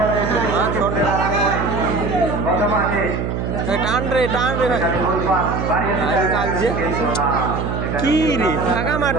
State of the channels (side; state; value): right; noise; hum, 2 dB below the sound